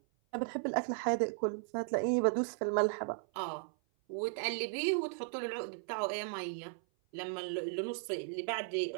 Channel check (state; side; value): silent; left; 54 dB below the other